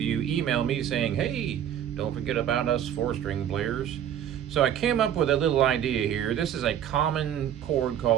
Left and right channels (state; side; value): quieter; left; 10.0 dB